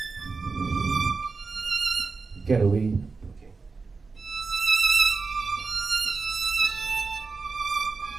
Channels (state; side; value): quieter; left; 4.4 dB